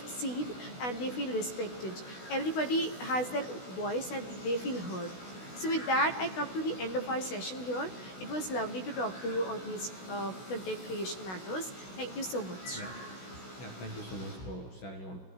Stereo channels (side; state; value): right; late; 16 ms